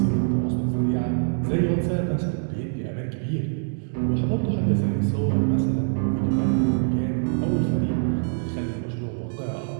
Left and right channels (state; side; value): silent; left; digital silence